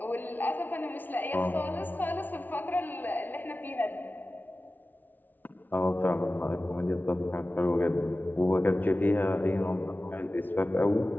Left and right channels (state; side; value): late; right; 0.085 ms